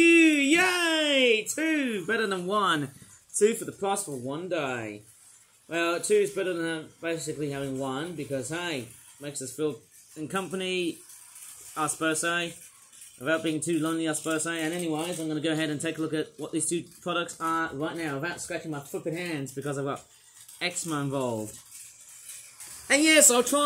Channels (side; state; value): both; identical; correlation 1.00